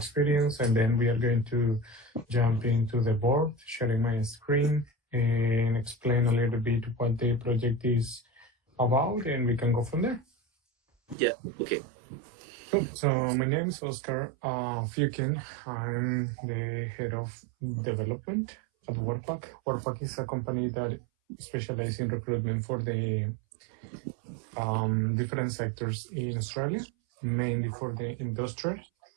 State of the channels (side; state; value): left; drops out; at 11.2 s